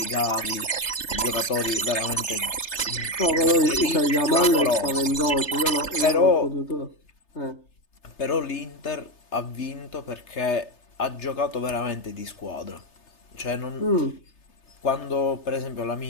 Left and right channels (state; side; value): late; right; 3.3 ms